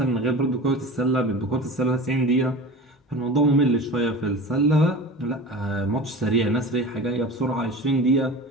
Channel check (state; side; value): normal; both; correlation 0.34